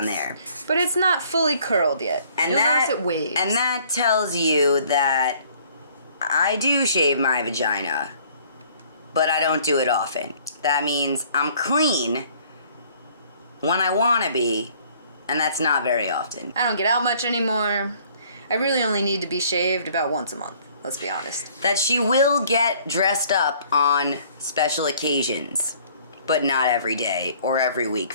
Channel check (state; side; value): inverted; both; correlation -0.58